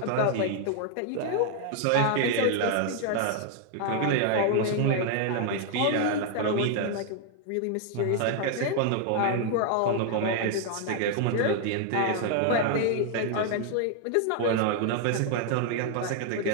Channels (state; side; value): different; both; correlation 0.00